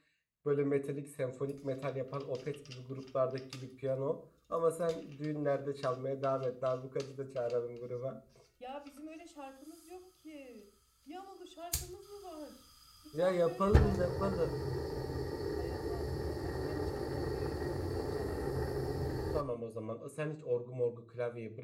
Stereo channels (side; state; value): both; identical; correlation 1.00